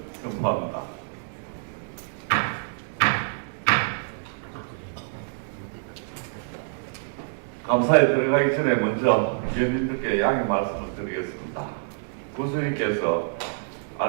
선포합니다. 감사에 들어가기 전에 먼저 위원님들께 양해 말씀을 드리겠습니다. 군수님께서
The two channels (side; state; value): left; silent; digital silence